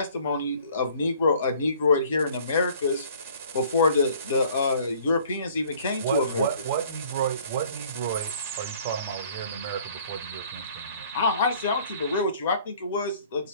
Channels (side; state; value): both; inverted; correlation -0.55